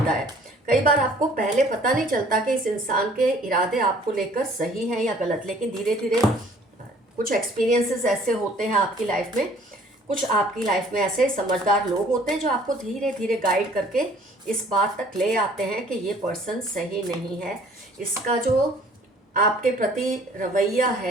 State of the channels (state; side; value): normal; both; correlation 0.55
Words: है। कई बार आपको पहले पता नहीं चलता कि इस इंसान के इरादे आपको लेकर सही हैं या गलत, लेकिन धीरे धीरे कुछ एक्सपीरियंसेस ऐसे होते हैं आपकी लाइफ में, कुछ आपकी लाइफ में ऐसे समझदार लोग होते हैं जो आपको धीरे धीरे गाइड करके इस बात तक ले आते हैं कि ये पर्सन सही नहीं है। इसका जो आपके प्रति रवैया